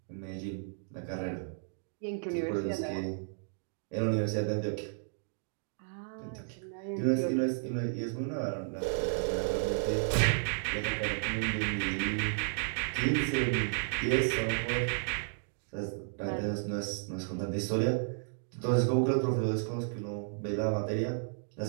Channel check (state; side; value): silent; left; digital silence